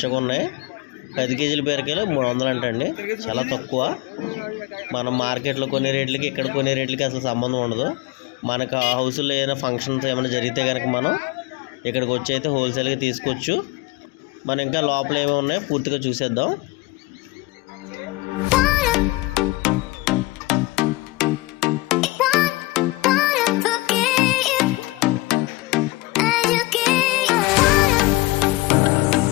ఉన్నాయి, 10 కేజీల బీరకాయలు 300 అంటండి. చాలా తక్కువ. మనం మార్కెట్లో కొనే రేట్లకి ఇక్కడ కొనే రేట్లకి అసలు సంబంధం ఉండదు. మనకు హౌస్లో ఏదైనా ఫంక్షన్స్ ఏమైనా జరిగితే కనుక మనం ఇక్కడికి వచ్చి అయితే హోల్సేల్గా తీసుకోవచ్చు. మనం ఇంకా లోపల ఏమేమి ఉన్నాయో పూర్తిగా చూసేద్దాం.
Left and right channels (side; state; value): right; quieter; 20.9 dB